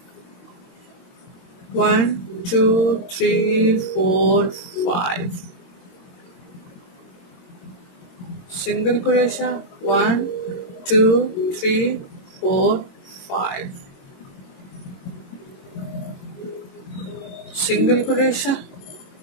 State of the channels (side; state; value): right; late; 22 ms